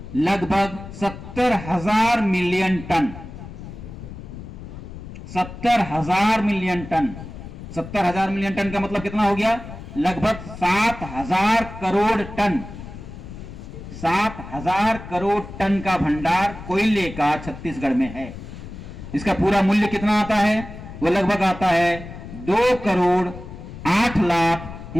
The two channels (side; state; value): left; noise; rumble, 12 dB below the sound